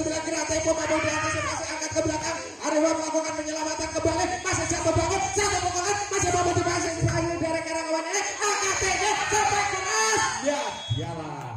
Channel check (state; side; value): identical; both; correlation 1.00